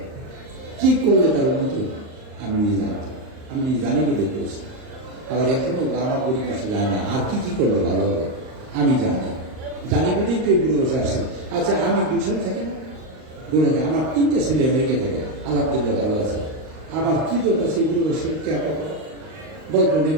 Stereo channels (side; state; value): left; late; 38 ms